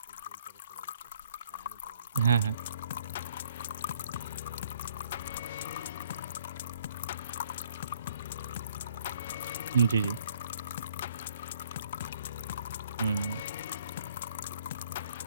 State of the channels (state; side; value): inverted; both; correlation -0.63